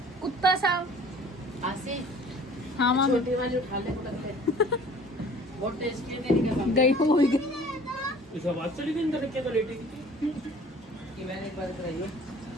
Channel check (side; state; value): both; normal; correlation 0.49